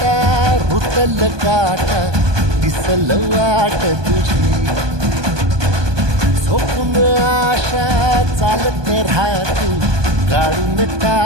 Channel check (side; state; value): left; late; 1.2 ms